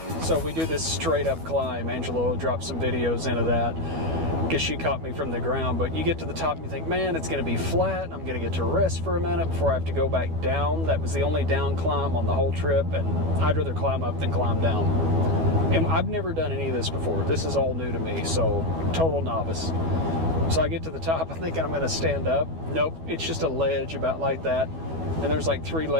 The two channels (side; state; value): left; late; 12 ms